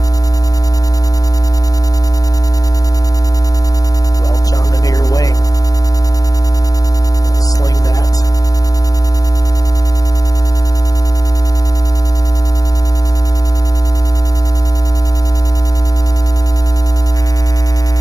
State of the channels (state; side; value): late; right; 0.18 ms